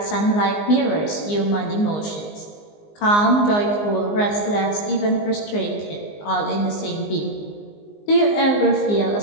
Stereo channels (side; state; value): right; late; 19 ms